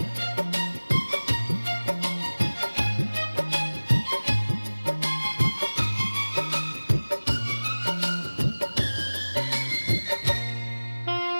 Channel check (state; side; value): inverted; both; correlation -1.00